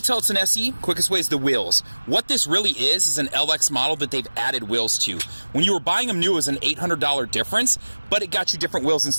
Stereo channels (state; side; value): inverted; both; correlation -1.00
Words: tell it's an SE, quickest way is the wheels. What this really is an LX model that they've added wheels to. When you were buying them new, it was an $800 difference, but it got you different wheels